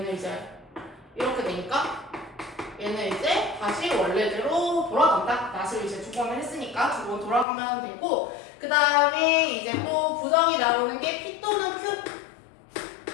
이제 이렇게 되니까 얘는 이제 다시 원래대로 돌아간다. 낫을 이제 2번을 했으니까 2번 돌아가면 되고, 그 다음에 이제 또 부정이 나오는 게 P 또는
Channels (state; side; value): drops out; right; at 7.5 s